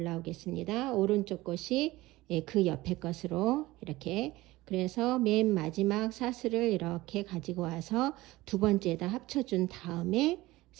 오른쪽 것이 그 옆에 것으로 이렇게 그래서 맨 마지막 사슬을 이렇게 가지고 와서 두 번째에다 합쳐준 다음에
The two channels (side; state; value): left; quieter; 18.8 dB